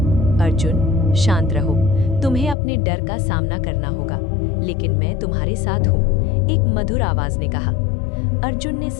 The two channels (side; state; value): right; drops out; at 2.6 s